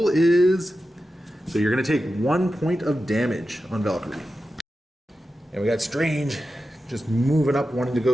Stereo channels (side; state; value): both; normal; correlation 0.92